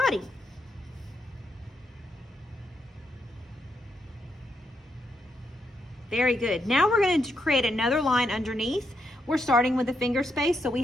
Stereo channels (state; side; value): normal; both; correlation 0.80